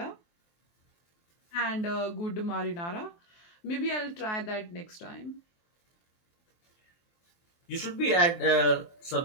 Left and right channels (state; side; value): late; right; 23 ms